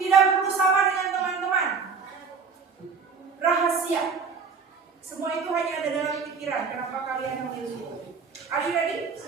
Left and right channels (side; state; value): left; quieter; 5.4 dB